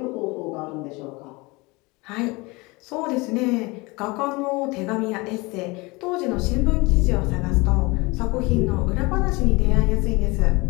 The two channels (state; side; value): quieter; right; 24.7 dB